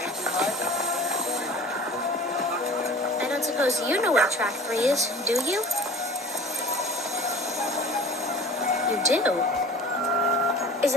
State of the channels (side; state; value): both; normal; correlation 0.43